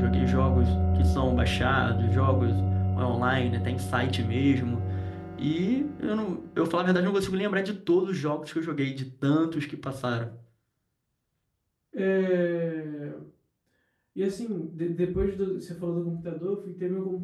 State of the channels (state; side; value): identical; both; correlation 1.00